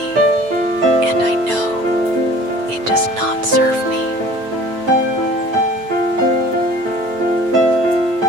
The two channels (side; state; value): left; late; 8.9 ms